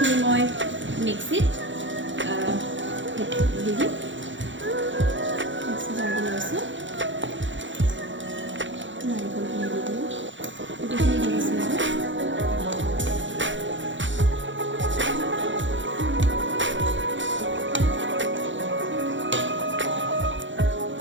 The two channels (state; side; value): late; left; 0.55 ms